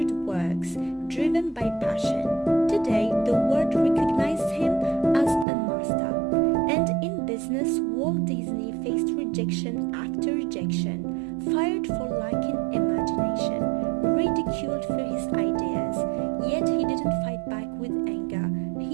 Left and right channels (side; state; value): left; drops out; at 5.5 s